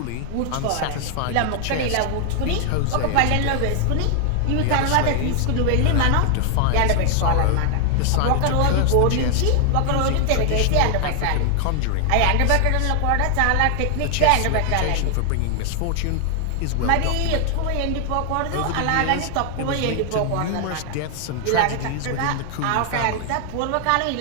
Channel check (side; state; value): both; different; correlation 0.00